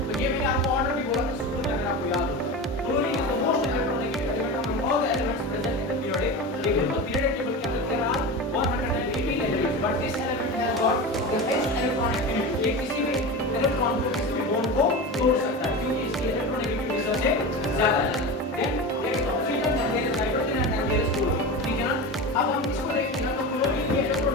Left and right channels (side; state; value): both; normal; correlation 0.26